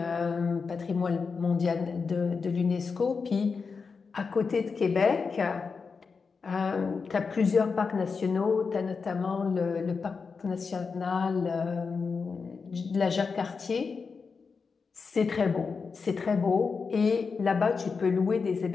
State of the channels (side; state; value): right; quieter; 5.1 dB